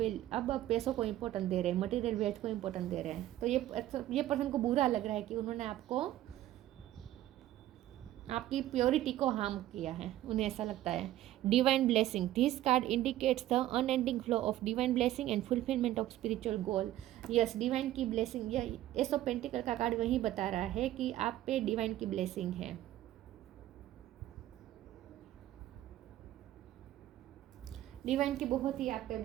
पैसों को इम्पोर्टेंट दे रहे हैं, मटेरियल वेल्थ को इम्पोर्टेंट दे रहे हैं। तो ये पर्सन को बुरा लग रहा है कि उन्होंने आपकी प्योरिटी को हार्म किया है, उन्हें ऐसा लगता है। Divine blessing, this card indicates the unending flow of divine blessing and fulfilment of spiritual goal. Yes, divine की ब्लेसिंग, यह एस ऑफ पेंटिकल का कार्ड वही बता रहा है कि आप पे डिवाइन की ब्लेसिंग है। डिवाइन की बहुत ही आप पे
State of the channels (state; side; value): quieter; left; 14.0 dB